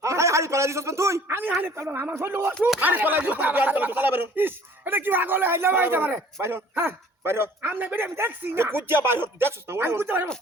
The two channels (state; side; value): normal; both; correlation 0.52